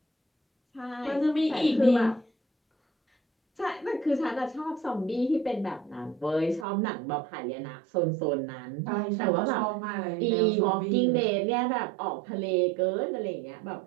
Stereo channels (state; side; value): drops out; left; at 6.7 s